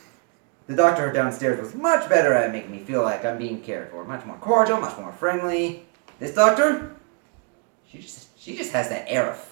The doctor downstairs was much better at making me feel like I'm being cared for. Much more cordial, much more friendly. This doctor, she just has that air of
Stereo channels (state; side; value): quieter; left; 33.7 dB